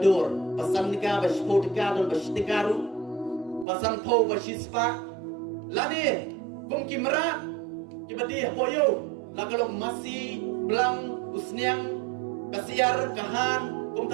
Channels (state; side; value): drops out; left; at 3.7 s